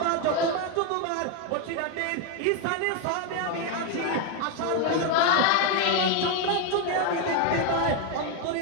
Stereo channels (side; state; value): both; different; correlation 0.02